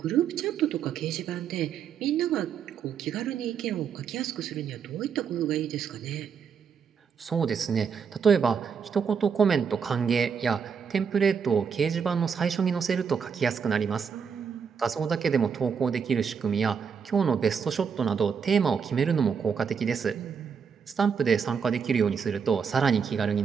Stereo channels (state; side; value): quieter; left; 6.5 dB